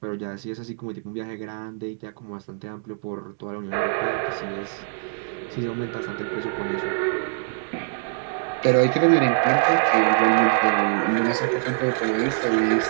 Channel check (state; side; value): silent; left; digital silence